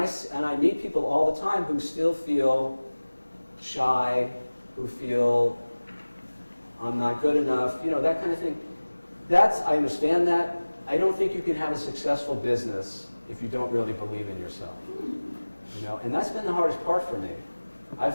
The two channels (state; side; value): inverted; both; correlation -1.00